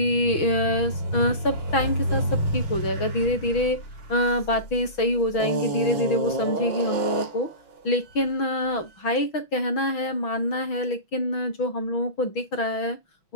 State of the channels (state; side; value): late; right; 6.2 ms